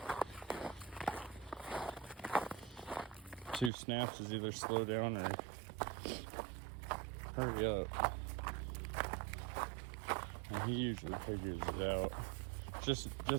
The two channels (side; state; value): left; drops out; at 3.7 s